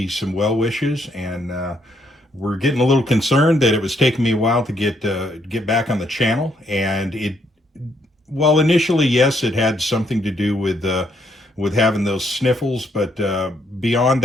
some well wishes, and we're getting a little concerned that it was taking me a while to get back on the channel. And well, initially, yes, it had something to do with having those sniffles, but beyond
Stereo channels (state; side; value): normal; both; correlation 0.72